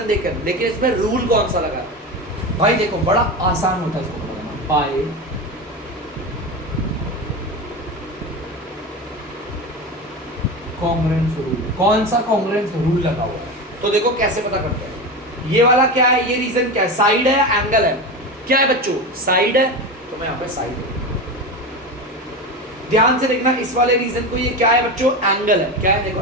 देकर, लेकिन इसमें रूल कौन सा लगा भाई, देखो बड़ा आसान होता है इसको लगाना, बाय कॉन्ग्रुएंस रूल। कौन सा कॉन्ग्रुएंस रूल लगा हुआ है, तो देखो कैसे पता करते हैं। ये वाला क्या है, ये रीजन क्या है, साइड है या एंगल है, क्या है बच्चों, साइड है, तो मैं यहाँ पे साइड है। ध्यान से देखना, इस वाले रीजन को ये क्या है बच्चों, एंगल है, क्या है, देखो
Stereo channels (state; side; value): normal; both; correlation 0.22